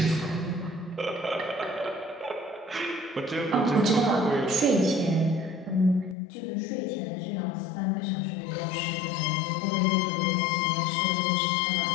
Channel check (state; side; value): drops out; right; at 6.2 s